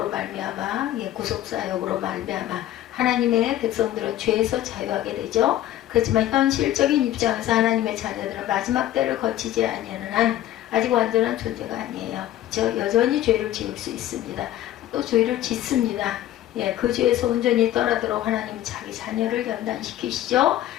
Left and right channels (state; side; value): quieter; right; 13.1 dB